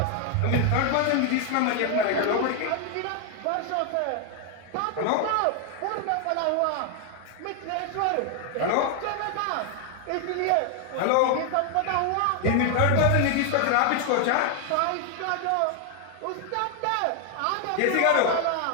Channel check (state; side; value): different; both; correlation 0.00